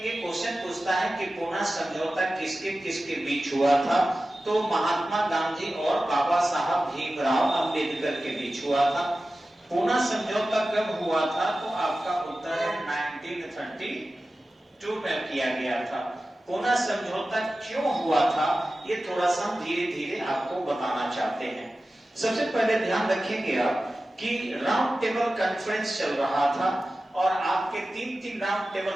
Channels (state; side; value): normal; both; correlation 0.95